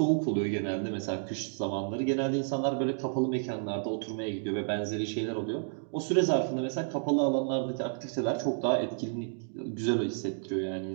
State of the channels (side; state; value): left; silent; digital silence